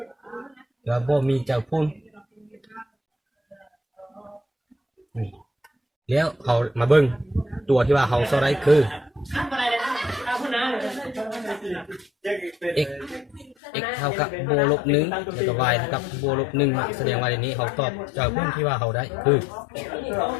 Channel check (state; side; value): drops out; right; at 13.6 s